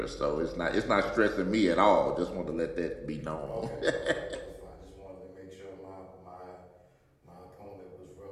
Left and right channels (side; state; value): both; identical; correlation 1.00